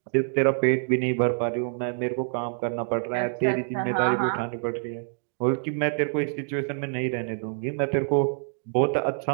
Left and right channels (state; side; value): silent; left; 61 dB below the other